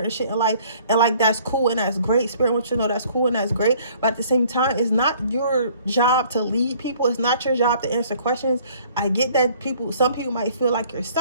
shit in life. And like, that's cool and that's great. Spirit wants you to know that's cool and that's great. But at the same time, it's not your job to lead people. It's not your job to answer questions. I get that some people might feel like you're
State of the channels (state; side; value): inverted; both; correlation -0.57